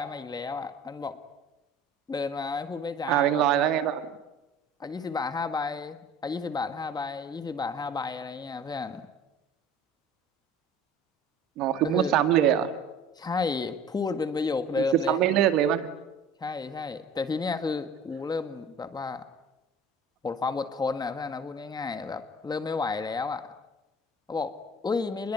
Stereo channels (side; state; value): left; quieter; 3.1 dB